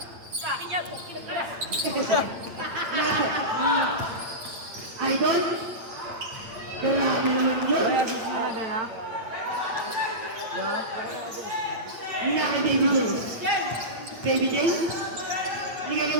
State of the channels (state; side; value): late; left; 8.4 ms